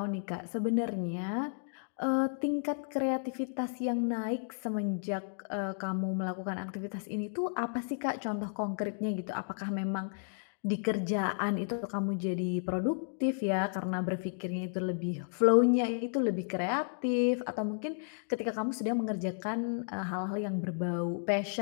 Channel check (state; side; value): silent; right; digital silence